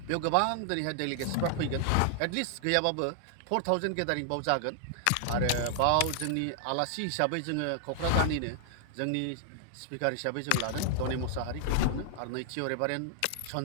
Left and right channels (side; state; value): both; different; correlation -0.01